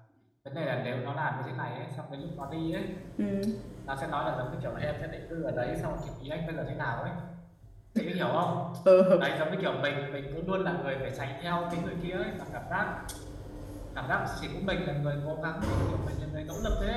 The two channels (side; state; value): both; identical; correlation 1.00